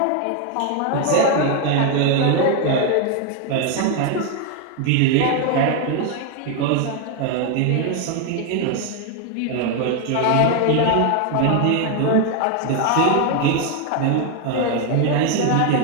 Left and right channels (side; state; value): both; different; correlation 0.01